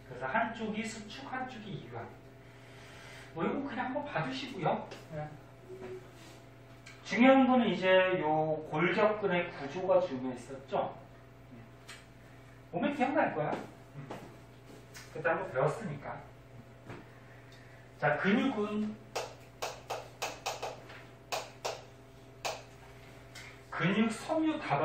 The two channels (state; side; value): identical; both; correlation 1.00